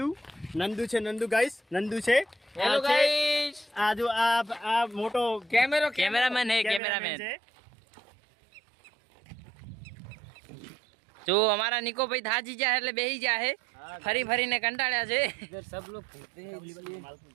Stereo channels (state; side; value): drops out; left; at 6.8 s